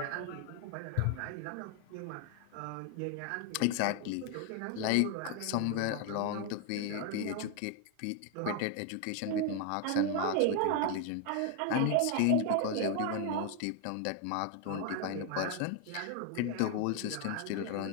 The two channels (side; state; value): both; different; correlation 0.01